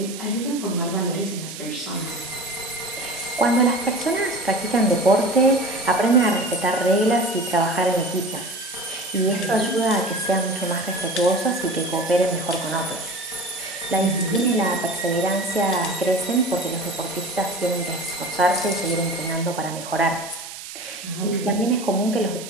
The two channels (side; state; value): right; noise; hiss, 12 dB below the sound